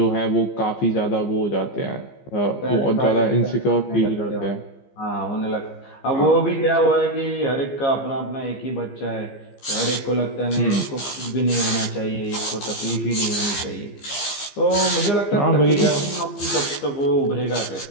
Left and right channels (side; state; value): right; late; 15 ms